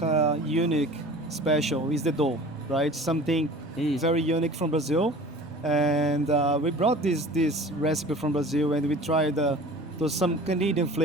unique, special is the dough, right? Something very unique from Brazil, and we brought this recipe from Brazil, and we tried to some Canadian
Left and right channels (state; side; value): normal; both; correlation 0.42